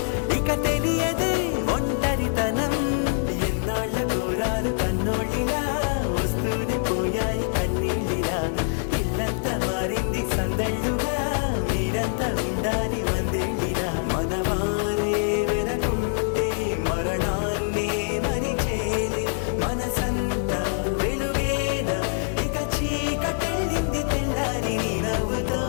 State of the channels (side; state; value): right; silent; digital silence